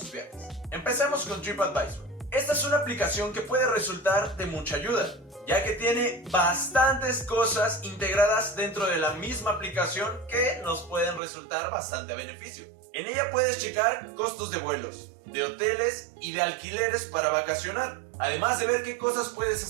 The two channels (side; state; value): left; drops out; at 11.2 s